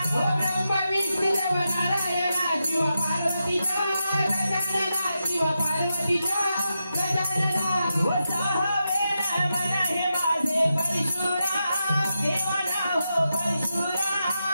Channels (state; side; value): inverted; both; correlation -0.87